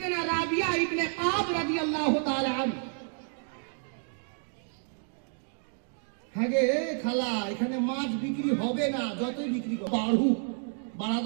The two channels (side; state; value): left; silent; 56 dB below the other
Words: রাবিয়া ইবনে কাব রাদিয়াল্লাহু তাআলা আলম। হ্যাঁ গে খালা, এখানে মাছ বিক্রি হবে না, যতই বিক্রি করো বাড়া